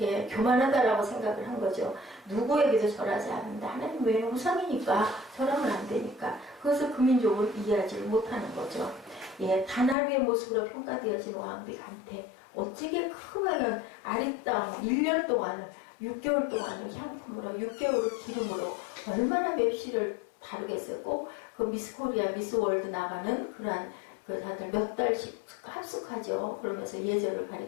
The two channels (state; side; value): drops out; right; at 10.0 s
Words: 교만하다라고 생각을 한 거죠. 누구에게도 절하지 않는다. 하나님 외에는 우상이니까 절하면 안 되니까 그것을 그 민족은 이해하지 못하는 거죠. 단 하루의 모습으로 평가되어진 왕비 간태 어찌게 크면 아리따운 1년 동안 6개월 동안을 향품으로 6개월을 기름으로 얼마나 맵시를 다르겠어요. 꼭 그 미스 코리아, 미스 월드 나가는 그러한 그 다들 몇 달씩 합숙하죠. 그러면서 예절을